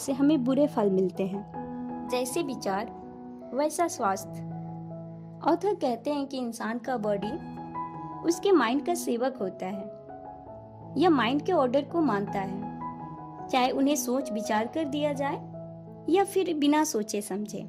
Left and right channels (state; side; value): identical; both; correlation 1.00